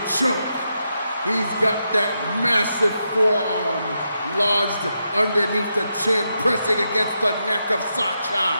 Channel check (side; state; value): both; inverted; correlation -0.84